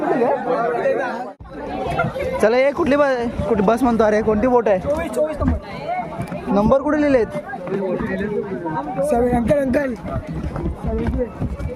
का? चला ये. कुठली बस म्हणतो? अरे कोणती बोट आहे? 24 नंबर कुठे लिहिलेत?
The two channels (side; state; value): both; identical; correlation 1.00